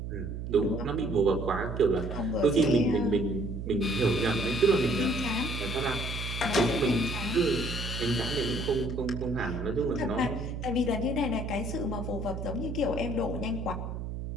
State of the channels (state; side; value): noise; right; hum, 6 dB below the sound